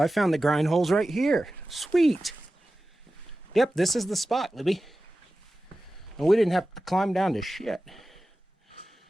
found the grind holes right here. Sweet. Yep, this is the spot, Libby. And we didn't have to climb down to shit.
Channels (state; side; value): normal; both; correlation 0.95